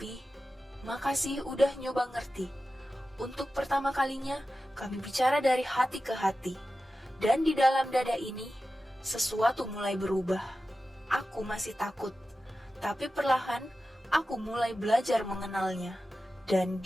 makasih udah nyoba ngerti. Untuk pertama kalinya, kami bicara dari hati ke hati. Dan di dalam dada ini, sesuatu mulai berubah. Aku masih takut. Tapi perlahan, aku mulai belajar mengenalnya. Dan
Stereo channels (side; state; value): both; normal; correlation 0.93